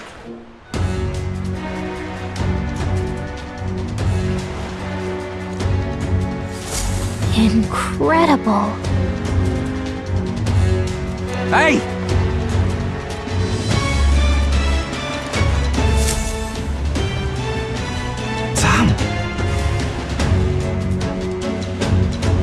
Incredible. Hey! Sam!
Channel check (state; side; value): identical; both; correlation 1.00